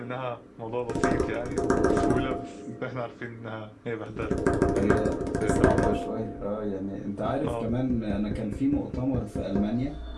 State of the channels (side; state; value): both; identical; correlation 1.00